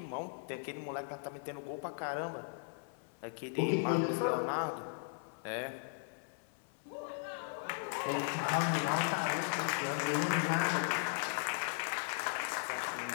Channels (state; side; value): silent; right; 53 dB below the other